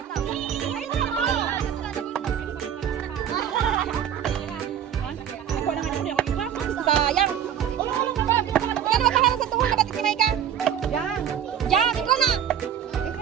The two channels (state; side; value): quieter; left; 9.2 dB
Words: Sayang. Yan, makaharap sa tuhod na batik ni Maika. Yan. Yan, ikaw na.